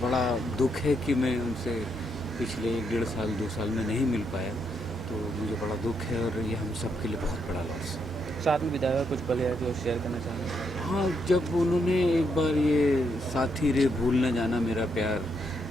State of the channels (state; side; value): normal; both; correlation 0.78